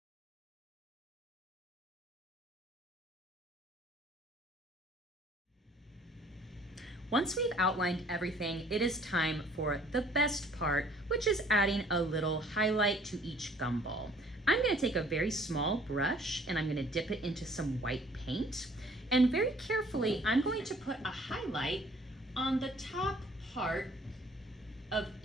Once we've outlined everything, it is time for the best part, which is adding a little highlight to each gumball. I'm going to take a very small brush and I'm going to dip it into some white paint. And very carefully, I'm going to put a highlight on the top part of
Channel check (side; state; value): both; normal; correlation 0.57